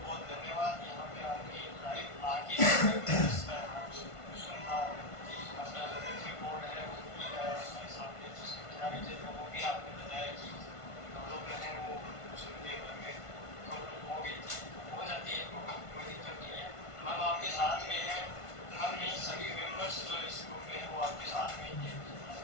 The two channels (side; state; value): right; late; 1.5 ms